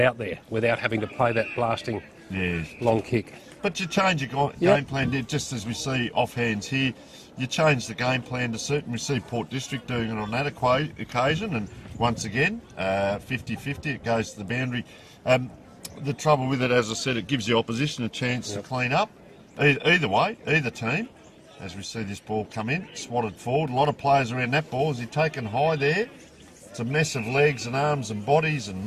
there without having to play that blasting long kick. But you change your game plan, just as we see offhands here. You change the game plan to suit, and we see Port District doing it on that occasion, and once again, 50-50, it goes to the boundary. The trouble with it, as I said, it gives the opposition a chance to clean up. Either way, either team. As we see this ball come in, swatted forward. A lot of players around that ball. Is he taken high there? It's a mess of legs and arms and bodies and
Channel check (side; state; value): both; identical; correlation 1.00